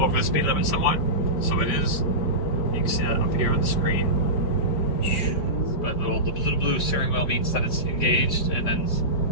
the speed limit somewhat. So it is. You can see that up here on the screen. but the little blue steering wheel means that it's engaged, and then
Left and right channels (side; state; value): right; late; 4.8 ms